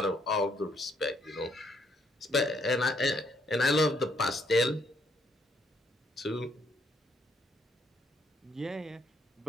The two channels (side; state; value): both; normal; correlation 0.70